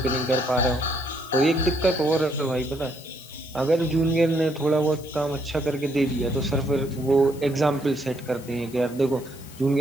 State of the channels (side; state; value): left; noise; hiss, 20 dB below the sound